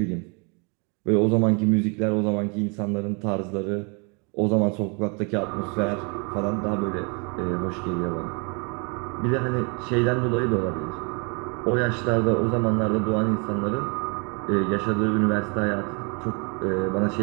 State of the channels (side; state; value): left; quieter; 33.7 dB